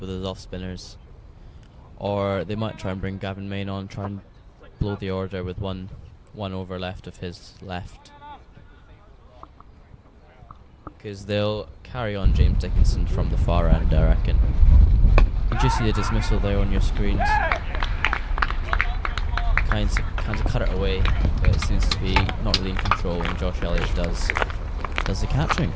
off spinners, or they might try and bring Gavin Main on, try and blow the order with one over left of his left, because they'll carry on James Dickinson from the far end, I reckon. You just see the dismissal there on your screens. Kind of cut it away, but it seems to be not really in control, and Josh Elliott does the catching.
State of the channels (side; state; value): both; identical; correlation 1.00